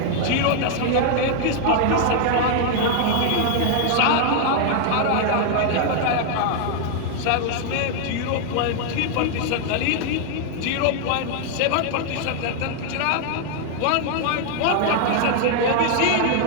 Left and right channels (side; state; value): both; different; correlation 0.00